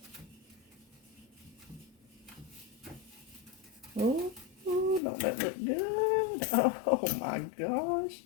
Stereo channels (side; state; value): right; drops out; at 5.0 s